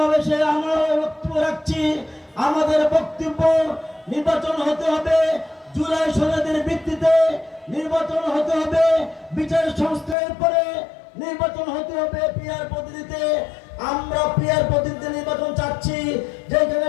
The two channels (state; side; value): drops out; right; at 10.2 s